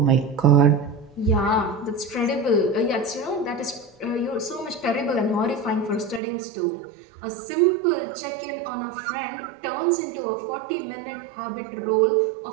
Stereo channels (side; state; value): left; drops out; at 6.2 s